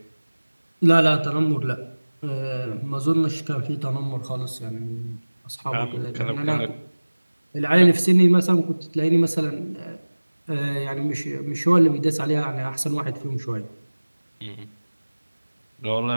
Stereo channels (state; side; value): inverted; both; correlation -1.00